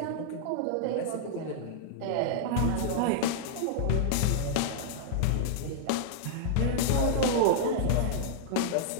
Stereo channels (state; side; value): different; both; correlation -0.01